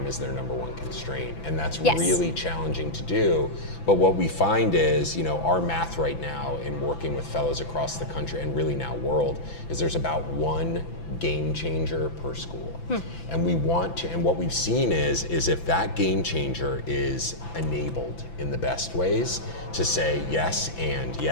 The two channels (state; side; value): late; right; 5.9 ms